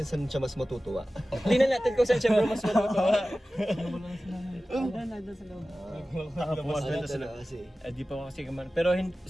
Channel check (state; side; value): normal; both; correlation 0.96